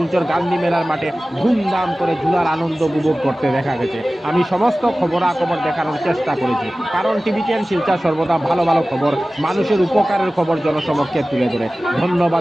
গান্ধী মেলার মাঠে ধুমধাম করে ঝুলার আনন্দ উপভোগ করতে দেখা গেছে। আমি সমস্ত খবরাখবর দেখানোর চেষ্টা করেছি, কারণ টিবিটিয়ান শিলচর সর্বদা ভালো ভালো খবর, মানুষের উপকারের খবর জনসমক্ষে তুলে ধরে।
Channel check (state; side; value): normal; both; correlation 0.97